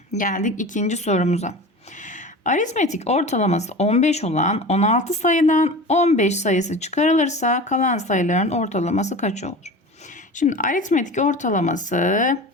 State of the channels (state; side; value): normal; both; correlation 0.34